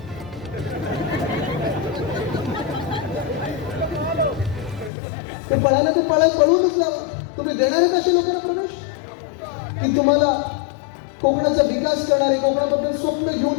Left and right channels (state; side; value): drops out; right; at 4.9 s